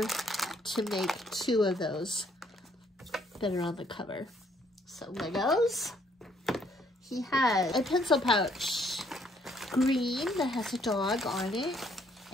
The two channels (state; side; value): normal; both; correlation 0.67